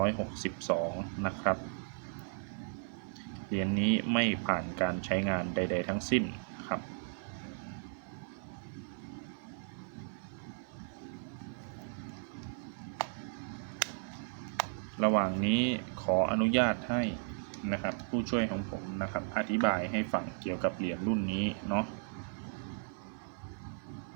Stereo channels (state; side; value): silent; left; 54 dB below the other